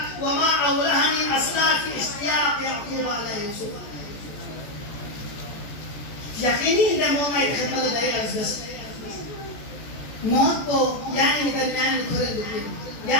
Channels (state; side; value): late; right; 14 ms